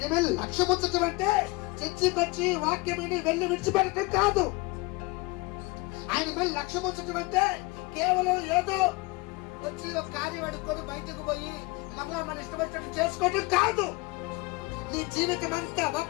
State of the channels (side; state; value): right; quieter; 24.1 dB